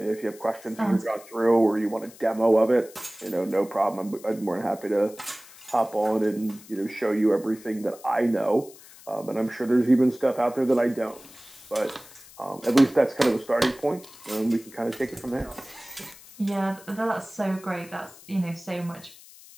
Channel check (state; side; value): noise; left; hiss, 21 dB below the sound